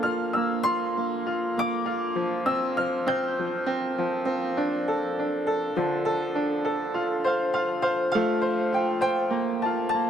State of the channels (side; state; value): both; normal; correlation 0.74